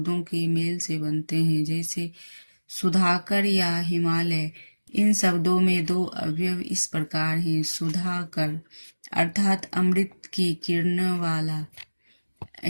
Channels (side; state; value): both; inverted; correlation -1.00